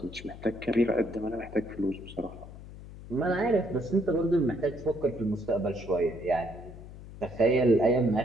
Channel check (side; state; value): left; noise; hum, 15 dB below the sound